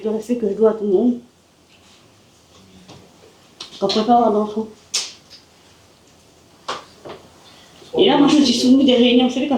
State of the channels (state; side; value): identical; both; correlation 1.00